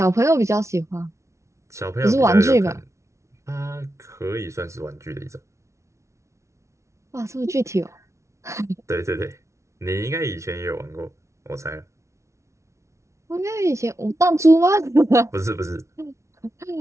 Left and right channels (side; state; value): left; late; 0.14 ms